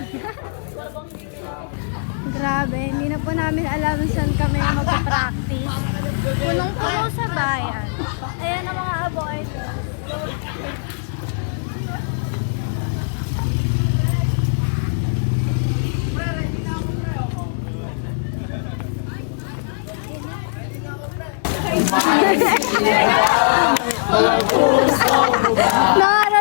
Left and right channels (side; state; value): right; silent; digital silence